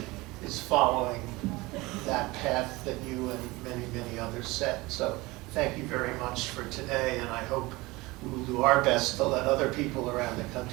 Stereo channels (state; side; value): quieter; left; 21.8 dB